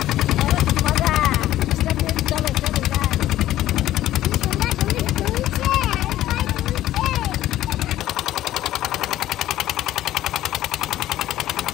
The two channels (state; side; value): quieter; right; 14.0 dB